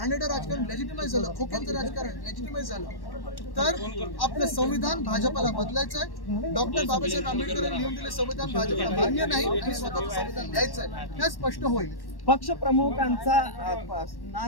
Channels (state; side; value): late; right; 1.1 ms